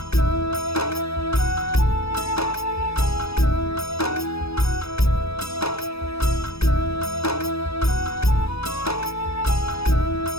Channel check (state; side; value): late; right; 0.78 ms